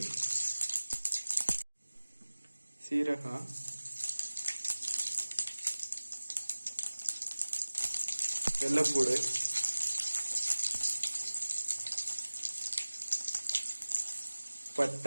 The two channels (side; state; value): both; inverted; correlation -1.00